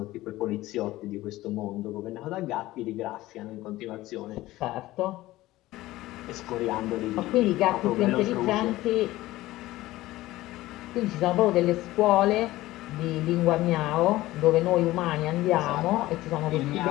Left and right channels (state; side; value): quieter; right; 17.1 dB